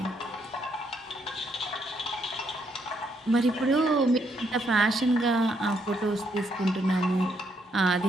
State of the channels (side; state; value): both; normal; correlation 0.74